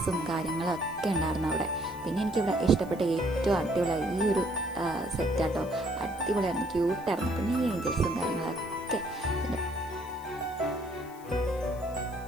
കാര്യങ്ങളും ഒക്കെ ഉണ്ടായിരുന്നു അവിടെ. പിന്നെ എനിക്കിവിടെ ഇഷ്ടപ്പെട്ട ഏറ്റവും അടിപൊളിയായി ഈ ഒരു സെറ്റാട്ടോ. അടിപൊളിയായിരുന്നു, ക്യൂട്ടായിരുന്നു. പിന്നെ ഈ ഏഞ്ചൽസും കാര്യങ്ങളൊക്കെ. പിന്നെ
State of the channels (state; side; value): noise; left; hiss, 23 dB below the sound